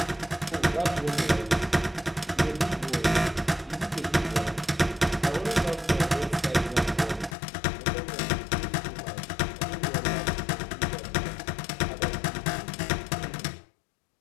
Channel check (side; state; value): right; drops out; at 7.4 s